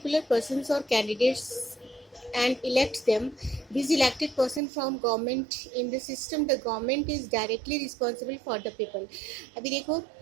persons or candidates and elect them. These elected person from government in the system, the government is directly responsible for the people. अभी देखो,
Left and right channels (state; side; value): drops out; left; at 4.6 s